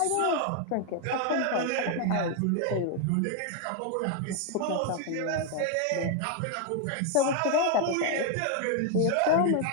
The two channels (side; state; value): both; different; correlation 0.01